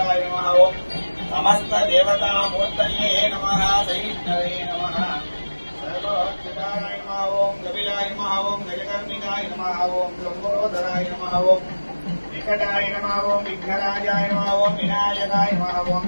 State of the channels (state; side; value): inverted; both; correlation -1.00